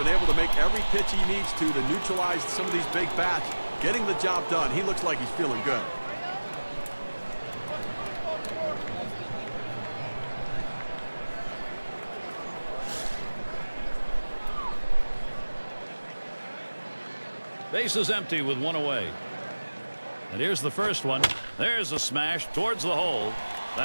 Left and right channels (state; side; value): inverted; both; correlation -1.00